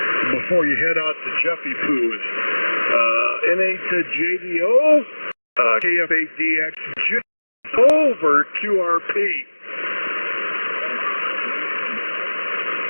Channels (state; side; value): inverted; both; correlation -1.00